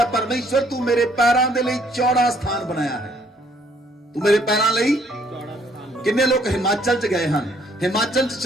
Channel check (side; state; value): both; normal; correlation 0.65